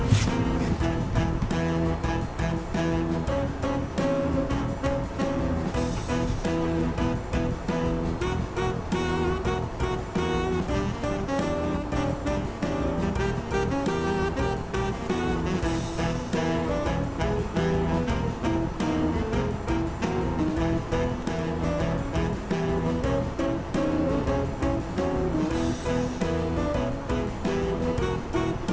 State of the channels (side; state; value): both; identical; correlation 1.00